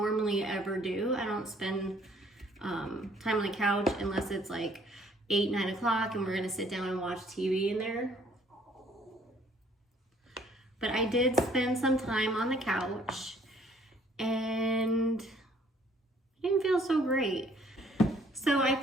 ever do. I don't spend time on the couch unless it's like 8, 9 o'clock and we're gonna sit down and watch TV in there. But I did spend some time on the couch and I didn't feel so great. So I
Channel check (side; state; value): both; normal; correlation 0.61